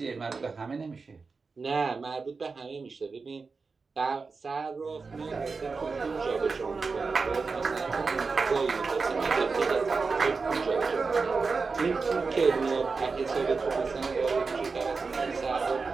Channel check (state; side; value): quieter; left; 4.5 dB